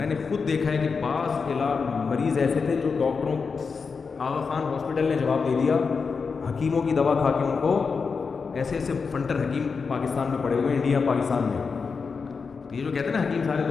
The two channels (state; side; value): quieter; right; 5.2 dB